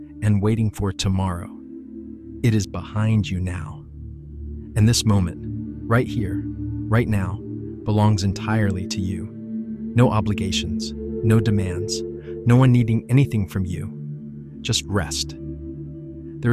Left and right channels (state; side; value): identical; both; correlation 1.00